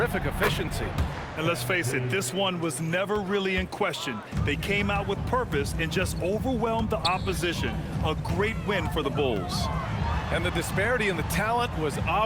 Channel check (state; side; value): identical; both; correlation 1.00